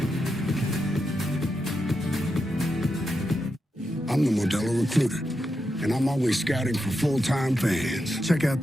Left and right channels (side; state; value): both; normal; correlation 0.86